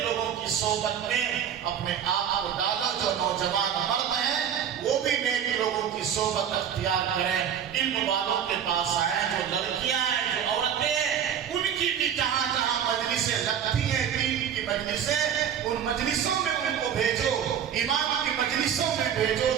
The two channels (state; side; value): quieter; left; 8.7 dB